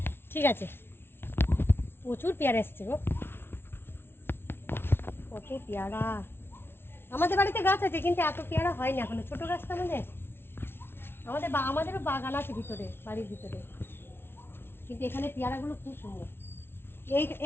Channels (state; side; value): late; right; 0.11 ms